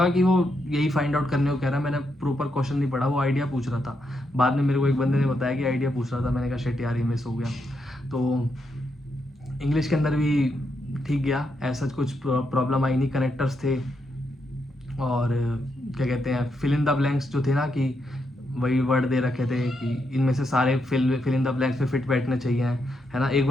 कि वो यही फाइंड आउट करने को कह रहा है, मैंने प्रॉपर क्वेश्चन नहीं पढ़ा, वो आइडिया पूछ रहा था। बाद में मेरे को एक बंदे ने बताया कि आइडिया पूछ रहा था, मैंने कहा शिट यार, ये मिस हो गया। तो इंग्लिश के अंदर भी ठीक गया, ऐसा कुछ प्रॉब्लम आई नहीं, कनेक्टर्स थे। और क्या कहते हैं, फिल इन द ब्लैंक्स जो थे ना, कि वही वर्ड दे रखे थे कि इनमें से सारे फिल इन द ब्लैंक्स में फिट बैठने चाहिए, है ना। एक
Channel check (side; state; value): both; normal; correlation 0.81